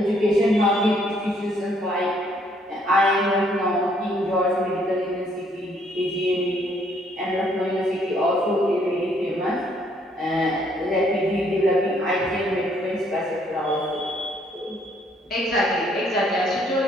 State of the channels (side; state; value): both; normal; correlation 0.67